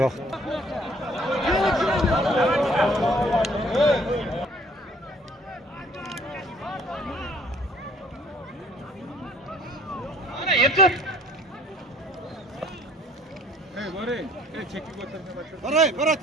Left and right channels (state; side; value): normal; both; correlation 0.57